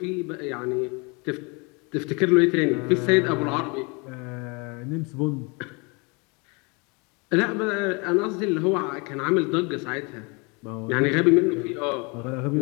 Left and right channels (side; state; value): right; quieter; 30.3 dB